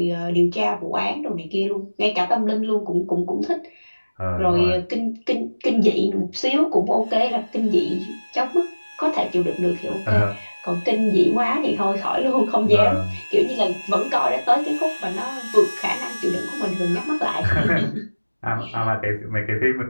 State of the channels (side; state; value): both; inverted; correlation -1.00